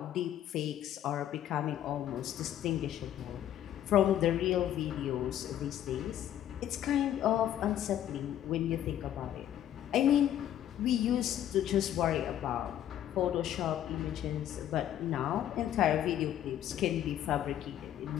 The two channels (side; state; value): right; quieter; 11.3 dB